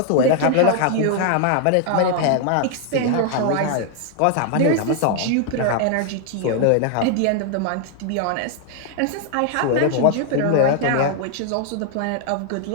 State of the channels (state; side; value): different; both; correlation 0.00